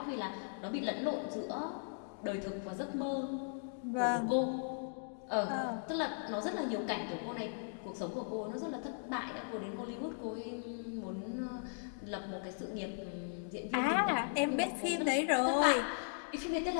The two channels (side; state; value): right; silent; digital silence